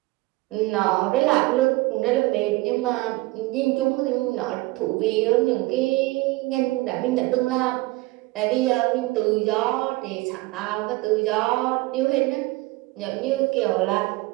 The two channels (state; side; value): quieter; left; 21.1 dB